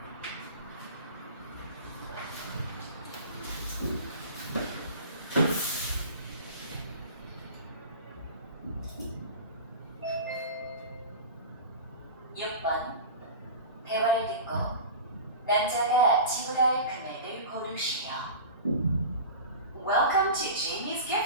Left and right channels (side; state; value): both; inverted; correlation -0.34